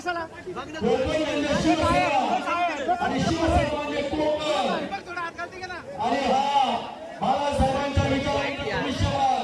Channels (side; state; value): both; identical; correlation 1.00